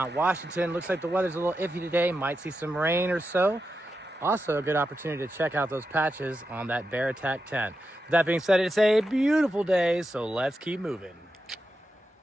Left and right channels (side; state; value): both; normal; correlation 0.88